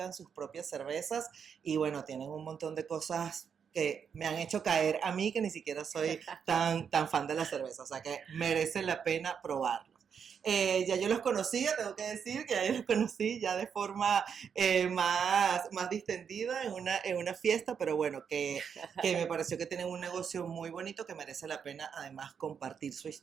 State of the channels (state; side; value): quieter; left; 7.1 dB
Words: sus propias cervezas y bueno, tienen un montón de cosas que me han hecho caer a mí, que ni siquiera soy tan fan de la cerveza, o sea que merece la pena probarlo. Ya yo los conocía, tengo que decir que ya yo los conocí ya de forma más distendida en una fiesta, pero bueno, que me pareció que tienen un negocio muy bonito que merece la pena además compartir su